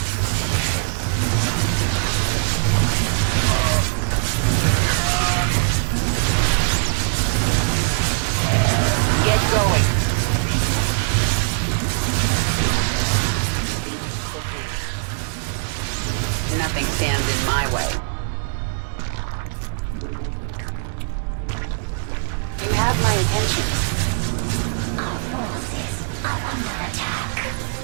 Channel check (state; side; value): silent; left; 58 dB below the other